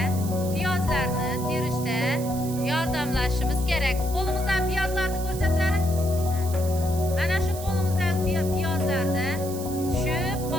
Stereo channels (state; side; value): noise; right; hiss, 12 dB below the sound